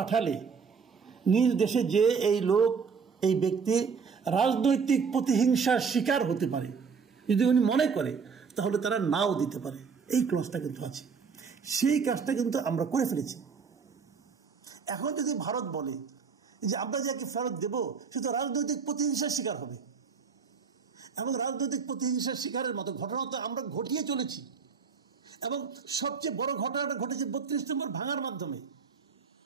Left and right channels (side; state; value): left; quieter; 5.7 dB